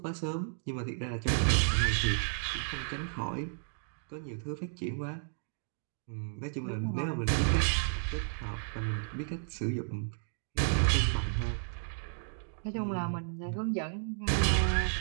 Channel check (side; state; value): left; silent; digital silence